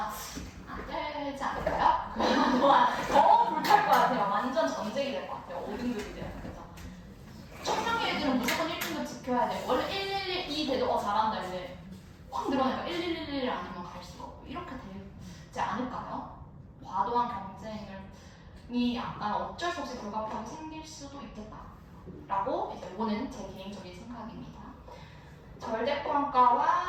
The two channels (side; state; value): both; identical; correlation 1.00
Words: 안 되지 않을까요? 그동안 더 불탈 것 같아요. 완전 전쟁이 될 것 같아요. 5등급이 되면 그죠? 청량의 애들은 무조건 1등급 지켜야 돼. 원래 112 돼도 잘한다 이제 확 늘어나니까 1111 아니면 갈 수가 없고 이렇게 되지 않을까요? 과도한 경쟁이 약간 어쩔 수 없이 불가피하게 생길 수도 있겠다라고 이제 이거는 제 개인적인 생각입니다.